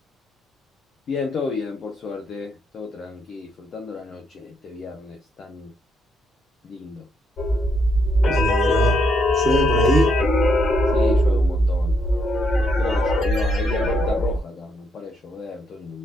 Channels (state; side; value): normal; both; correlation 0.76